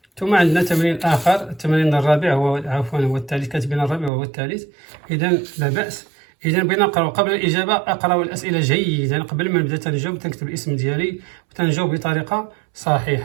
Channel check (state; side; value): drops out; left; at 4.1 s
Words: ثم عندنا تمرين آخر، التمرين الرابع هو الثالث، كاتبين الرابع وهو الثالث. إذا لا بأس. إذا بغينا نقراو قبل الإجابة، أقراو الأسئلة جيدا قبل ما نبدأ. تنجاوب، تنكتب الاسم ديالي وتنجاوب بطريقة